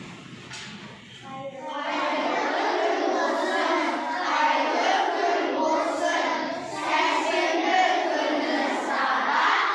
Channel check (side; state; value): both; identical; correlation 1.00